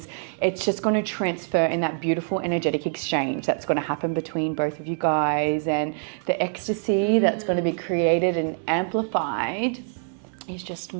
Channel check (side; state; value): left; silent; 62 dB below the other